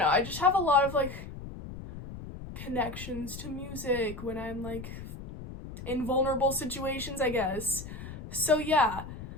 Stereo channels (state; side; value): noise; left; rumble, 11 dB below the sound